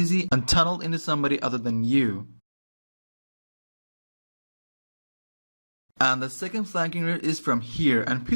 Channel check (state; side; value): inverted; both; correlation -1.00